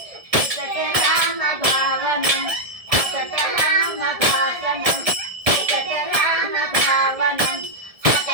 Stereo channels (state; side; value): late; left; 1.7 ms